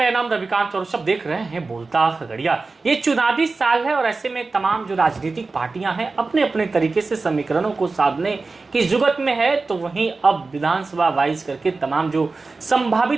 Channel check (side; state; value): left; quieter; 3.9 dB